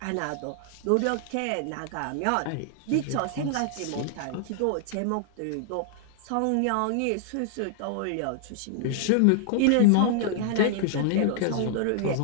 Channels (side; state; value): both; different; correlation 0.00